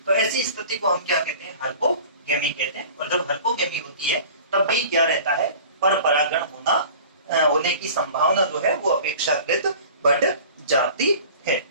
तो ऐसी स्थिति को हम क्या कहते हैं? हर्कोगेमी कहते हैं। और जब हर्कोगेमी होती है तब भी क्या रहता है? पर परागण होने की संभावना जो है वो अपेक्षाकृत बढ़ जाती है।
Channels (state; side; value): inverted; both; correlation -0.43